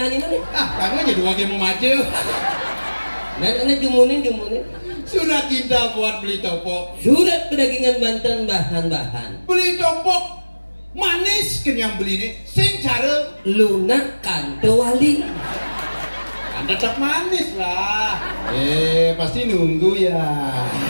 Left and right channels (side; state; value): both; inverted; correlation -1.00